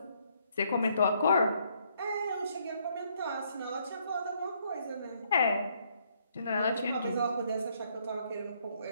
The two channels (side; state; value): both; inverted; correlation -0.70